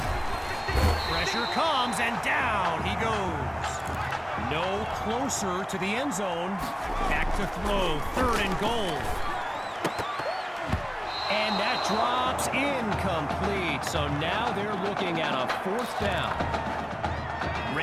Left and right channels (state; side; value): identical; both; correlation 1.00